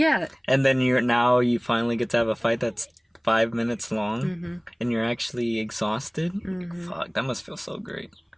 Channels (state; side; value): identical; both; correlation 1.00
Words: And then you finally get to have a fight that's 5 minutes long and you're actually exhausted. Fuck, that must feel so great.